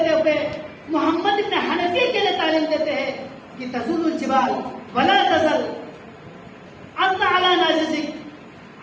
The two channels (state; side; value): identical; both; correlation 1.00